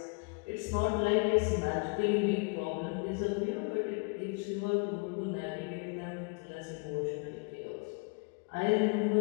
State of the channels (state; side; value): quieter; right; 33.8 dB